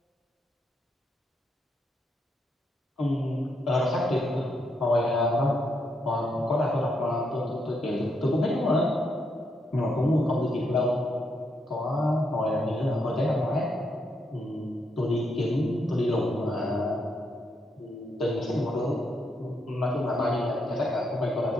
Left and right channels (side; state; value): both; normal; correlation 0.79